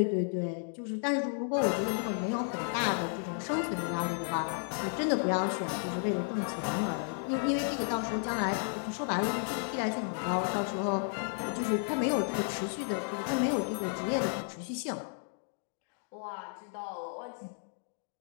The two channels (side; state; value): right; silent; 56 dB below the other